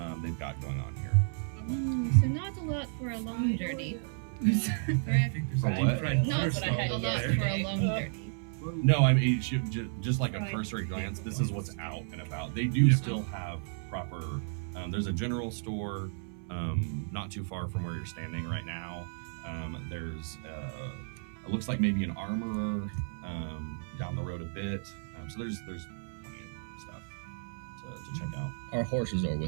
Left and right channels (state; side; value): silent; left; 56 dB below the other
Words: they've got going on here. So not a lot for a long journey. I think there's For a what? deep fried Not butter what I stall had a over lot there. for a long journey. No, I mean just like a Right. cursory glance. This is what's out and about. They do still have proper. There's a general store not too far from where you're standing right now. There's it looks like maybe an armorer down the road a bit. So there's plenty of stuff to check out. Our horses are